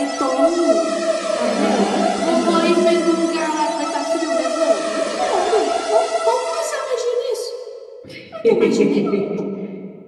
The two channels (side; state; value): both; identical; correlation 1.00